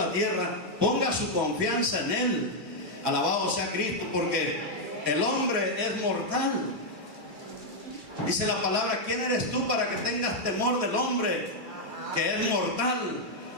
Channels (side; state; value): left; late; 2.3 ms